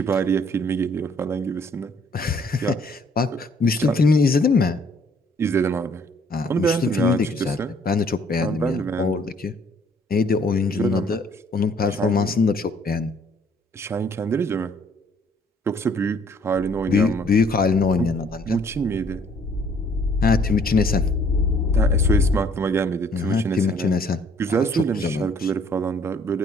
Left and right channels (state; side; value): normal; both; correlation 0.61